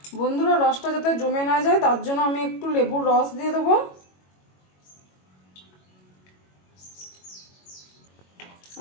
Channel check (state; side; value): late; right; 22 ms